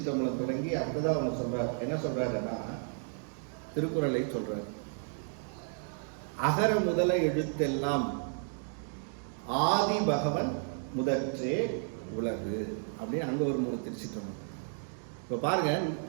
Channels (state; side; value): silent; left; 56 dB below the other